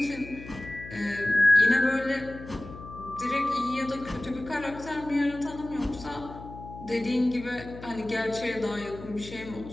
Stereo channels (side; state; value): left; noise; hum, 14 dB below the sound